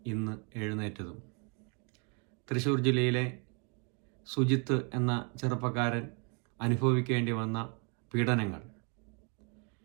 ഇന്ന് എഴുന്നേറ്റതും. തൃശ്ശൂർ ജില്ലയിലെ സുജിത്ത് എന്ന ചെറുപ്പക്കാരൻ അനുഭവിക്കേണ്ടി വന്ന പീഡനങ്ങൾ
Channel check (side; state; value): left; quieter; 35.8 dB